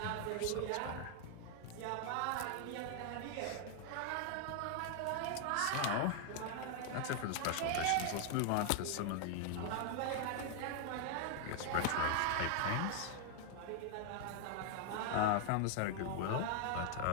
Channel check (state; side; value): different; both; correlation 0.00